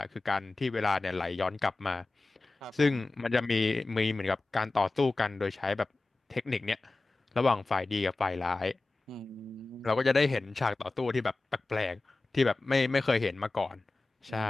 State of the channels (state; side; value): quieter; right; 3.3 dB